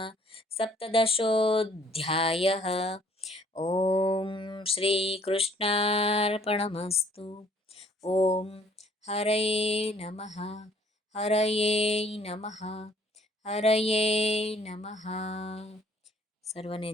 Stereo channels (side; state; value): both; normal; correlation 0.59